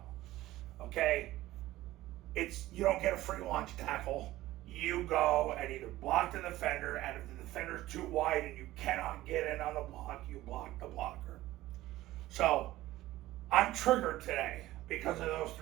Okay? You don't get a free lunch tackle. You go and either block the defender, and if the defender's too wide and you cannot get in on the block, you block the blocker. So, I'm triggered today because of those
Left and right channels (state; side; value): quieter; left; 16.2 dB